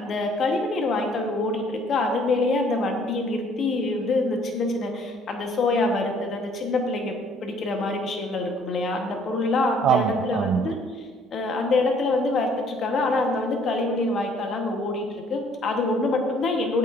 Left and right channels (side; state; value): both; normal; correlation 0.60